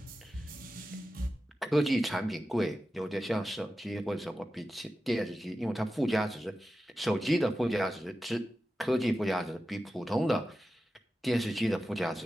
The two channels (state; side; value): normal; both; correlation 0.93